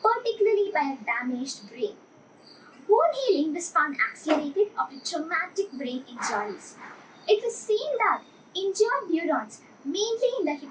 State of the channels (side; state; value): both; identical; correlation 1.00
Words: particularly by a damaged brain. Bone healing was found accelerated after traumatic brain injuries. It was seen that injured neurons, mainly in the